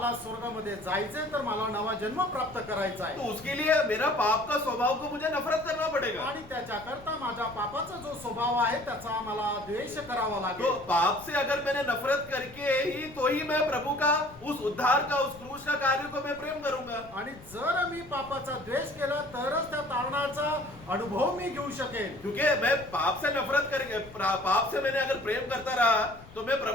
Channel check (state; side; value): noise; left; rumble, 20 dB below the sound